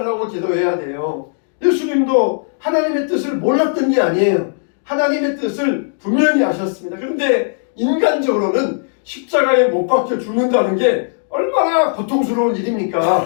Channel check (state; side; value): silent; right; digital silence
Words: 기도해야 돼요. 예수님도 하나님의 뜻을 몰랐던 게 아니에요. 하나님의 뜻을 분명히 아셨습니다. 그런데 인간적으로는 십자가에 못 박혀 죽는다는 게 얼마나 고통스러운